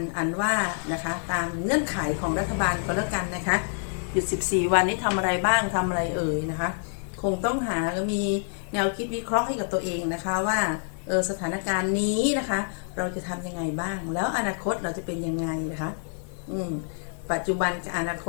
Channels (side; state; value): right; silent; 60 dB below the other